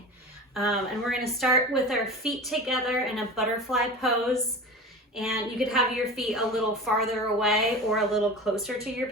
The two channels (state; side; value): normal; both; correlation 0.33